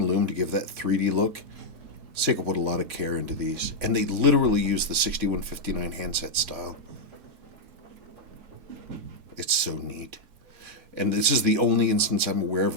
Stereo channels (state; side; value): late; left; 3.9 ms